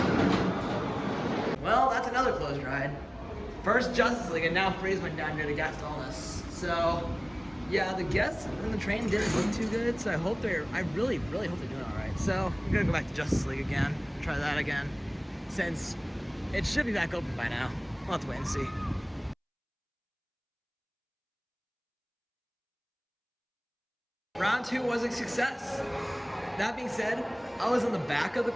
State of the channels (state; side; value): identical; both; correlation 1.00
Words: Well, that's another closed ride. First Justice League, and now Freeze went down here to guest illness. So, yeah, the guests in the train didn't look too good, so I really hope they're doing all right. So, I'm gonna go back to Justice League again, try that again, since it should be back open by now. We'll have to wait and see. Round 2 was a success. That being said, I was in the back of the